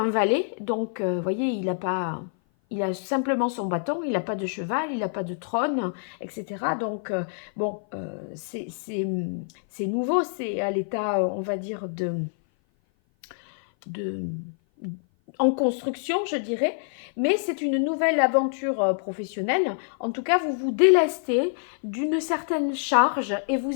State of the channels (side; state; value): right; silent; 56 dB below the other